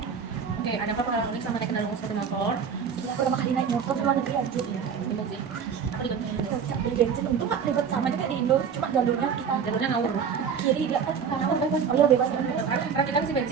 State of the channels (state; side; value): quieter; left; 6.8 dB